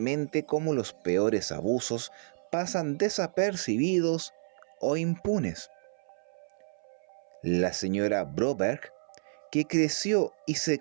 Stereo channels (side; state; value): left; silent; 58 dB below the other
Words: como los peores abusos pasan desapercibidos o impunes. La señora Broberg, que creció y se